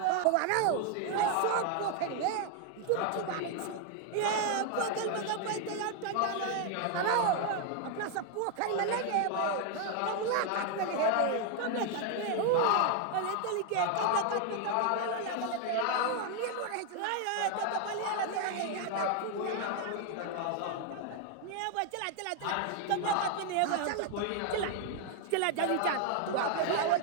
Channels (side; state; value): both; different; correlation 0.00